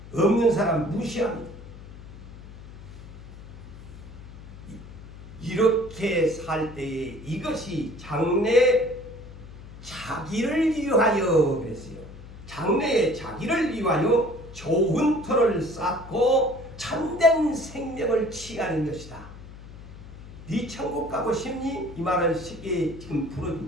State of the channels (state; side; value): noise; left; hum, 16 dB below the sound